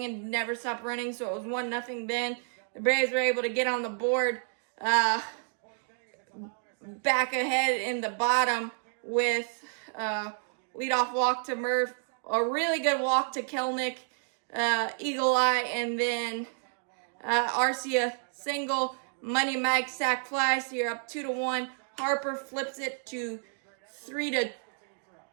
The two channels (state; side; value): silent; left; digital silence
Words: and never stopped running, so it was 1-0 then. The Braves were able to get on the board back ahead in the bottom with leadoff walk to Murph, a really good walk to Kelnick, eagle eye, and then Arcia single, Money Mike sack fly, so you're up 2-1. Harper flips it to